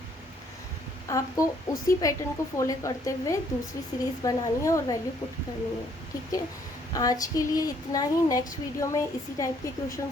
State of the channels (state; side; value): normal; both; correlation 0.65